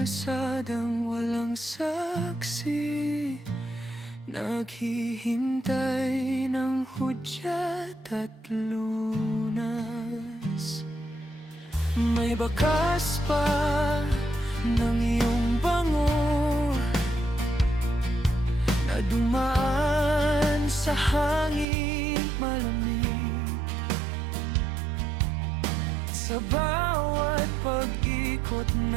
walang saksi, naghihintay ng hudyat at lunas. May bakas pa ng iyong bango na dumaan sa hangin malamig. Sa bawat pag-ikot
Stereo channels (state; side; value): drops out; left; at 21.7 s